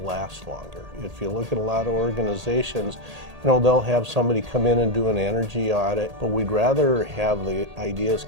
longer. If you look at a lot of organizations, they'll have somebody come in and do an energy audit, but we'd rather have the ideas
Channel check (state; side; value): late; left; 1.8 ms